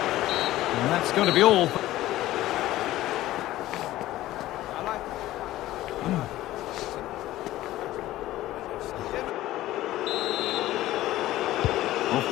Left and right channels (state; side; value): quieter; right; 15.5 dB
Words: And that's going to be all.